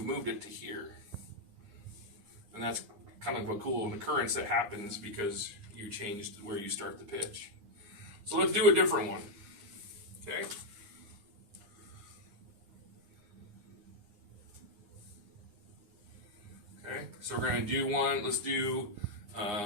moved it to here. And that's kind of a cool occurrence that happens because you changed where you start the pitch. So let's do a different one. Okay? Okay, so we're going to do one. Let's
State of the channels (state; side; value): late; left; 9.7 ms